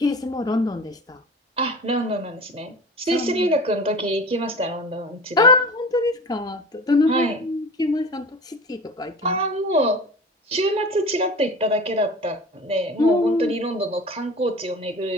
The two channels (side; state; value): both; normal; correlation 0.37